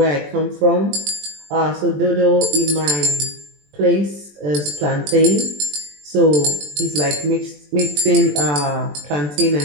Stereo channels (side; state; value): left; late; 20 ms